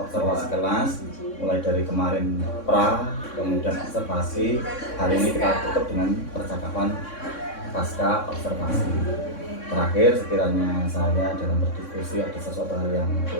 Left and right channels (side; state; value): right; late; 3.6 ms